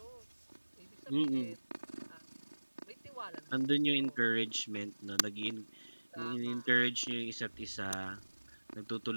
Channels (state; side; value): inverted; both; correlation -1.00